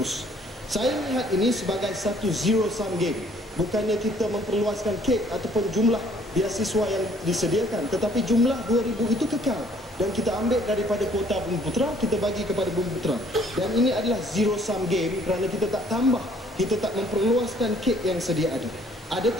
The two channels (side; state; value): both; normal; correlation 0.60